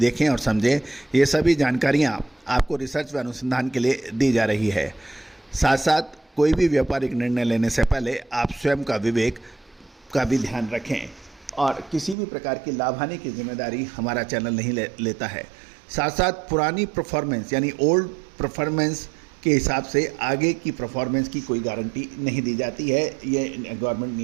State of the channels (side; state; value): left; drops out; at 12.2 s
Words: और समझें। ये सभी जानकारियाँ आपको रिसर्च व अनुसंधान के लिए दी जा रही है। साथ साथ कोई भी व्यापारिक निर्णय लेने से पहले आप स्वयं का विवेक का भी ध्यान रखें और किसी भी प्रकार की लाभ हानि की जिम्मेदारी हमारा चैनल नहीं लेता है। साथ साथ पुरानी परफॉर्मेंस यानी ओल्ड परफॉर्मेंस के हिसाब से आगे की परफॉर्मेंस की कोई गारंटी नहीं दी जाती है, ये गवर्नमेंट